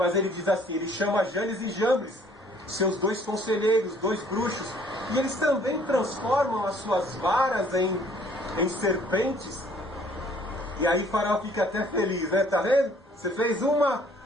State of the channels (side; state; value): both; normal; correlation 0.59